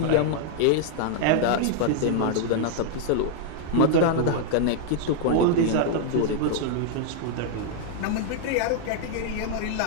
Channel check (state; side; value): different; both; correlation -0.01